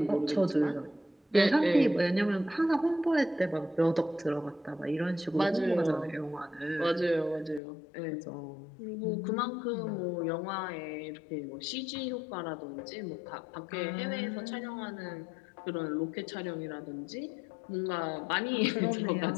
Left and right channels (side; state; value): right; drops out; at 7.6 s